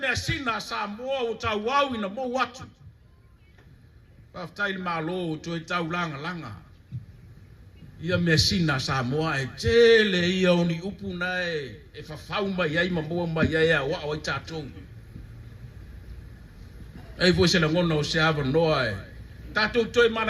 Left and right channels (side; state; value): both; identical; correlation 1.00